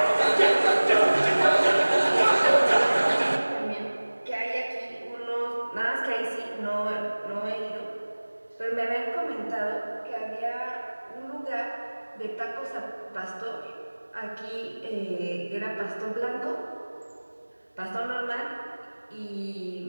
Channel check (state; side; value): inverted; both; correlation -1.00